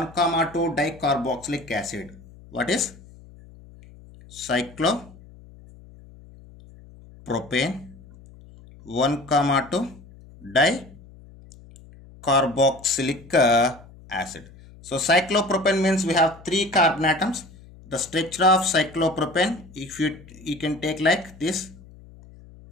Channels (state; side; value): noise; left; hum, 21 dB below the sound